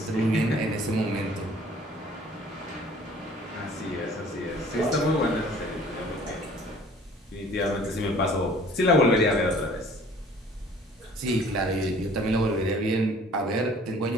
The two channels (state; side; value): normal; both; correlation 0.52